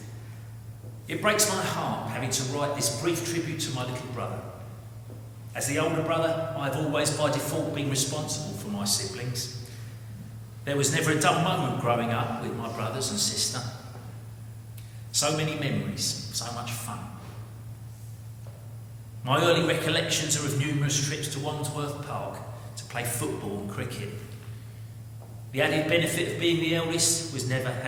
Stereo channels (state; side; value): identical; both; correlation 1.00